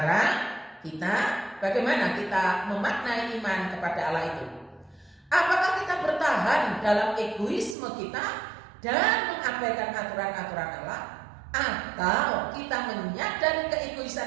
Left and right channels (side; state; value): left; drops out; at 7.8 s